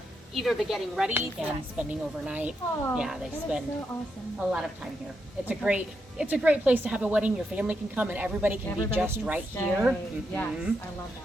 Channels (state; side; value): normal; both; correlation 0.82